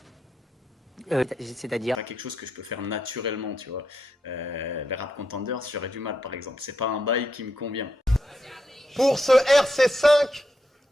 C'est-à-dire? C'est pas quelque chose que je peux faire naturellement, tu vois. Les rap contenders, j'aurais du mal, par exemple. C'est pas un bail qui me convient. Pour ce RC5,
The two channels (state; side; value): normal; both; correlation 0.82